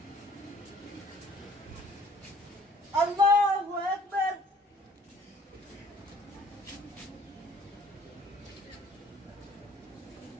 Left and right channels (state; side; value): normal; both; correlation 0.56